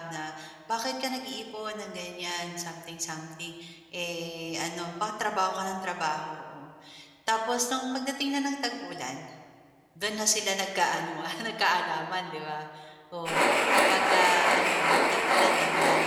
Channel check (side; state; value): both; identical; correlation 1.00